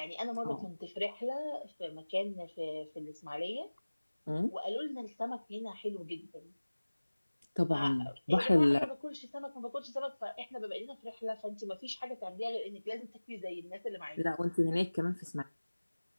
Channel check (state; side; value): inverted; both; correlation -1.00